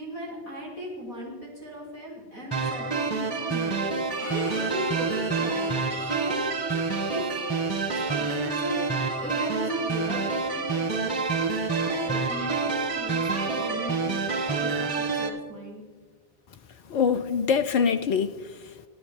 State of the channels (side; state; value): right; late; 4.5 ms